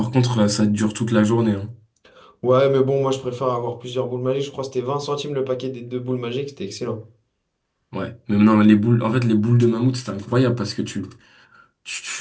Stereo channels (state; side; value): identical; both; correlation 1.00